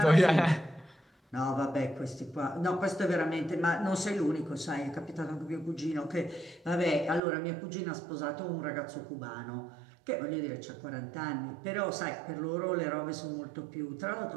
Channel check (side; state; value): left; drops out; at 7.2 s